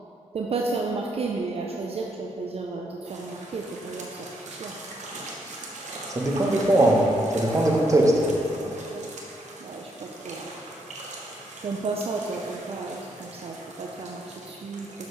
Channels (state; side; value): normal; both; correlation 0.75